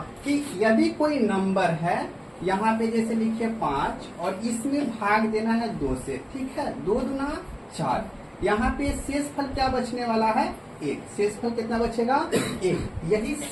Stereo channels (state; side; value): identical; both; correlation 1.00